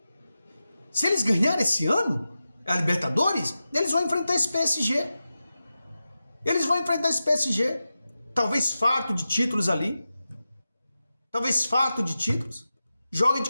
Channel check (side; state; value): both; inverted; correlation -0.93